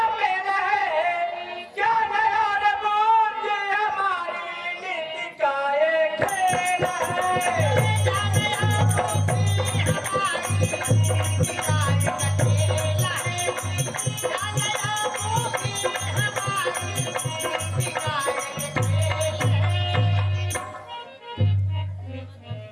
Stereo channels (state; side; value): identical; both; correlation 1.00